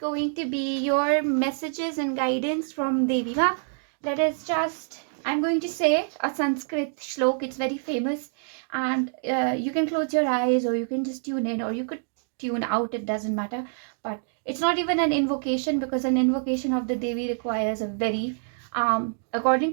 to be your messages and guidance from Devi Ma. I'm going to say a Sanskrit shlok, it's very famous, and you can close your eyes or you can just tune in or you could tune out, it doesn't matter. But it's not even an invocation because an invocation of the Devi requires a very,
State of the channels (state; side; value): silent; left; digital silence